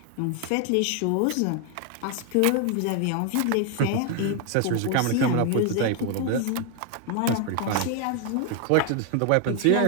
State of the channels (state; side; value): different; both; correlation 0.01